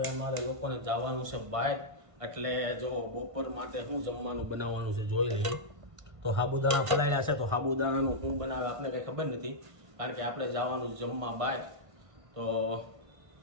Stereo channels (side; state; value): left; late; 1.5 ms